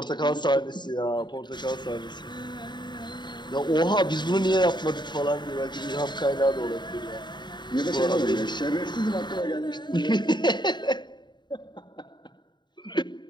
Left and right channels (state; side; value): late; right; 0.22 ms